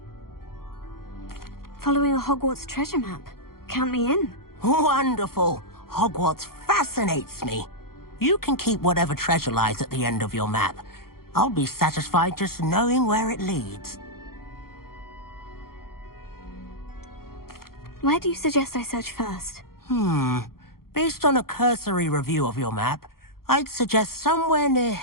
Following a Hogwarts treasure map. Count me in. Wonderful. Hogwarts fascinates me. You can keep whatever treasure lies at the end of your map. I'll be satisfied just knowing where it leads. Where do you suggest I search first? Based on a cursory review of your map, I'd suggest somewhere near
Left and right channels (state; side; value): late; right; 0.93 ms